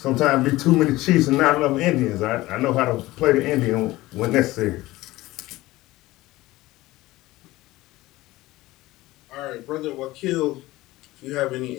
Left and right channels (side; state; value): right; quieter; 18.3 dB